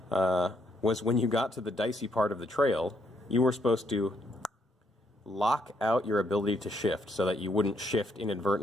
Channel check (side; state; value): both; normal; correlation 0.73